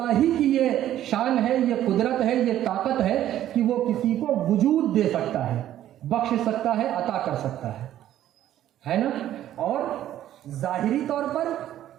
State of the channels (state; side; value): quieter; left; 12.3 dB